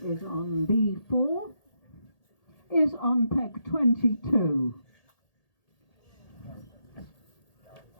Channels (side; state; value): right; late; 1.8 ms